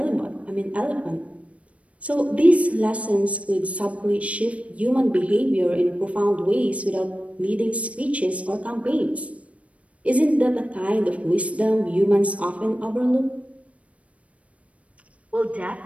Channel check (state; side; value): late; left; 0.064 ms